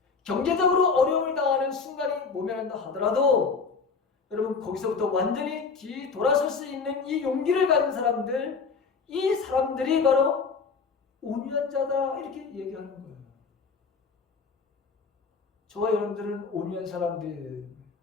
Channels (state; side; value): quieter; right; 5.1 dB